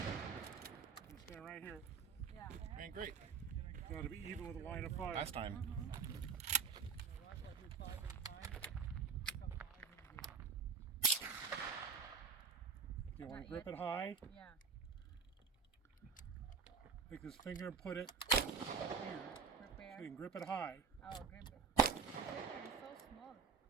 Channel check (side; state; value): left; quieter; 5.8 dB